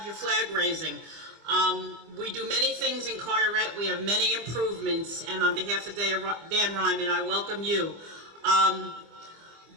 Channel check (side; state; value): left; late; 25 ms